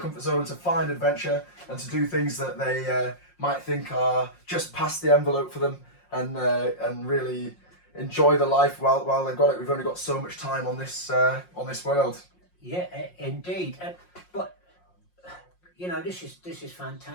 zone, to find adventure and to do things that they might think are just past the envelope for them, and really enjoy the life while they've got it. We've only got so much time on this world. Yeah, indeed. But you know, this is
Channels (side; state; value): right; late; 5.6 ms